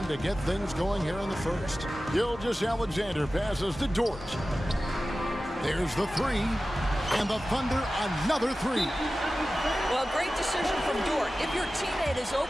to get things going here in the first. Gilgeous-Alexander passes to Dort. There's the 3. And the Thunder another 3. Well, great decision from Dort. If your teammate is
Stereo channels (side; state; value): both; normal; correlation 0.95